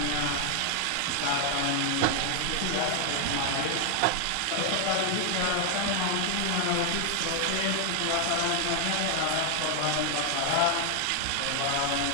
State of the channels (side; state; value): both; different; correlation 0.00